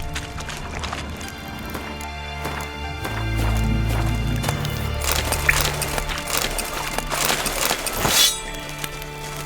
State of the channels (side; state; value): both; identical; correlation 1.00